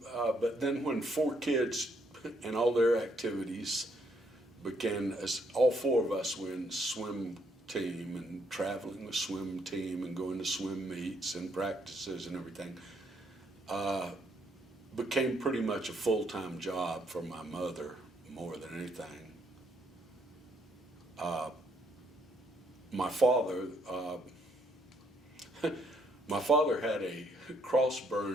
but then when 4 kids and all their activities began, as all 4 of us were in swim team and traveling with swim team and going to swim meets and practices and everything, became pretty much a full-time job for my mother more than anything. My father had a cross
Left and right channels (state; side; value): normal; both; correlation 0.71